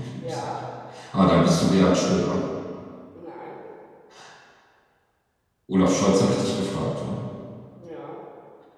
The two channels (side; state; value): both; identical; correlation 1.00